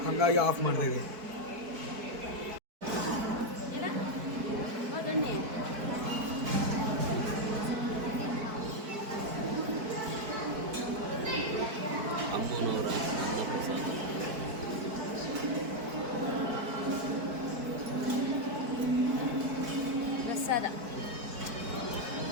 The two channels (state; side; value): late; left; 4.6 ms